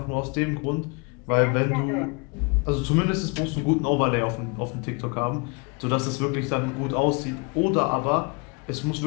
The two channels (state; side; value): quieter; right; 31.8 dB